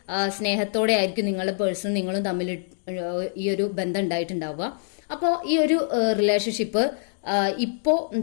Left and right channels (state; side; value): silent; right; digital silence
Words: സ്നേഹത്തോടെ ആയിരിക്കും നിങ്ങളുടെ പേഴ്സണും നിങ്ങളും തമ്മിൽ ഈ ഒരു ബന്ധം ഉണ്ടായിട്ടുണ്ടാവുക. അപ്പോൾ ഈ ഒരു റിലേഷൻഷിപ്പ് ഇപ്പോൾ